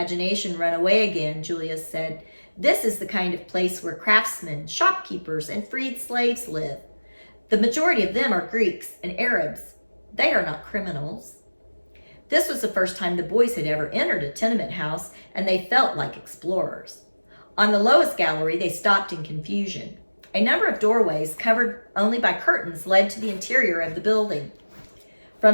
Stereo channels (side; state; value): both; inverted; correlation -1.00